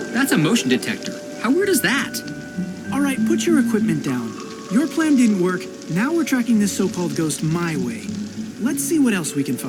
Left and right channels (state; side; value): identical; both; correlation 1.00